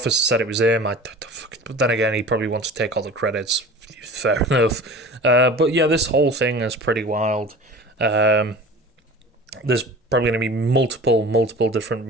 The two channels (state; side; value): normal; both; correlation 0.39